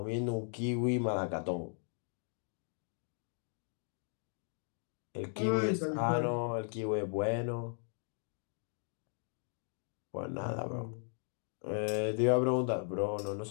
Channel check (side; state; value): right; silent; 53 dB below the other